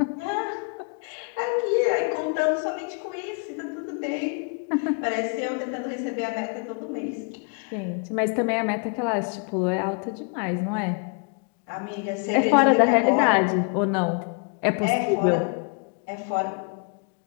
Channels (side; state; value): right; quieter; 36.2 dB